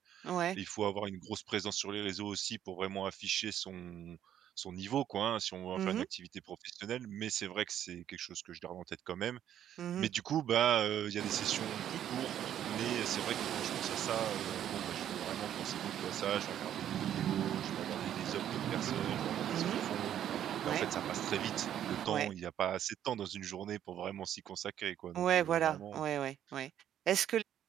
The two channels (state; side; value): quieter; left; 10.6 dB